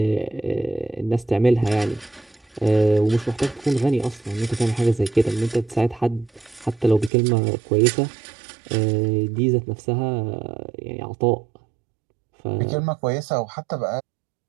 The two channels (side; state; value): left; drops out; at 7.1 s